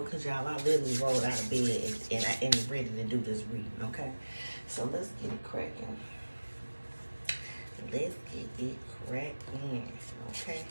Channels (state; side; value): inverted; both; correlation -1.00